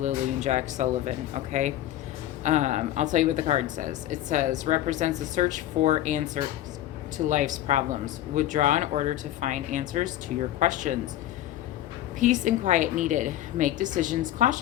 and Jack Sullivan, okay? I'll tell you what the card says. It says, represents a search for answers to life's problems. Withdraw in order to find answers to your questions. Peace and quiet needed. Make decisions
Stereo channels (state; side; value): quieter; right; 13.4 dB